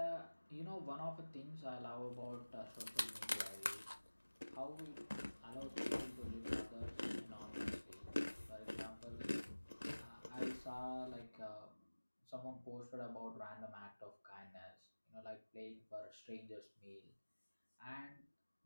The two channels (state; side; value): inverted; both; correlation -1.00